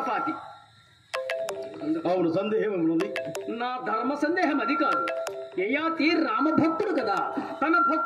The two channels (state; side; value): identical; both; correlation 1.00